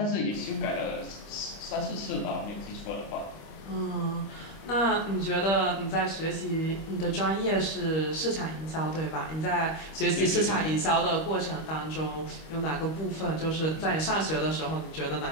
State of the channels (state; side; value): late; right; 25 ms